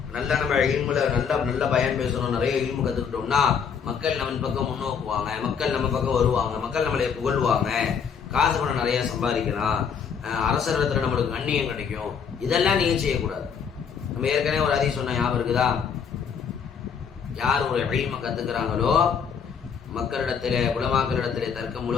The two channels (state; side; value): quieter; right; 6.8 dB